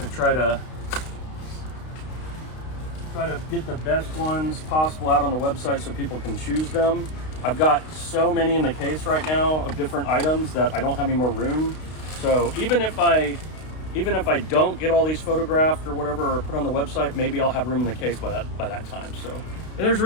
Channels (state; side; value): late; right; 32 ms